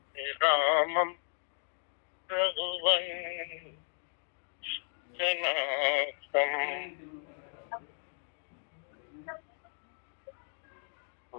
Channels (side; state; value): right; silent; digital silence